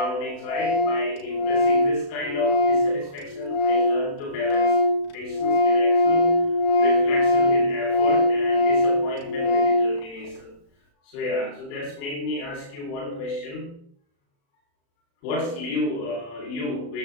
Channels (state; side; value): late; right; 35 ms